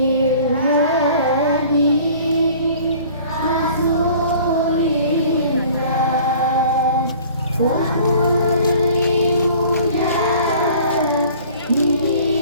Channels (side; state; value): both; inverted; correlation -0.49